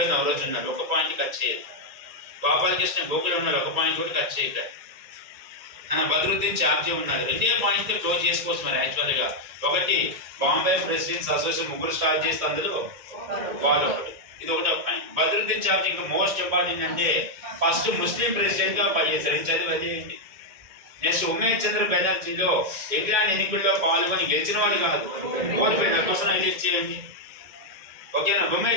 నవరోజు ఉన్నాడు, ఒక పాయింట్ కట్ చేయదు. గోపాలకృష్ణ గోకులు ఉన్నారు, ఒక పాయింట్ కూడా కట్ చేయగలరు. బద్రుద్దీన్ చార్జీ ఉన్నారు, రెండే పాయింట్స్ క్లోజ్ చేసుకోవచ్చు. మరి యాక్చువల్గా ఒకటి బాంబే ప్రెసిడెంట్స్ అసోసియేషన్ ముగ్గురు స్టార్ట్ చేస్తే అందులో వాళ్ళు ఒకటి, ఇది ఒకటి ఒక పాయింట్. బద్రుద్దీన్ చార్జీ ఇంకా మోస్ట్ ఇంపార్టెంట్ అంటే ఫస్ట్ ముస్లిం ప్రెసిడెంట్ గా పనిచేశారు, ఇది చదివి అది ఏంటి. నెక్స్ట్ ఉమేష్ చంద్ర బెనర్జీలో ఇంగ్లాండ్ ఎన్నికల్లో పాల్గొని గెలిచిన వాడు కాదు, ఓడిపోయిన కోసం ఎలెక్ట్ చేయండి. ఓకేనా.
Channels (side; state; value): left; late; 2.1 ms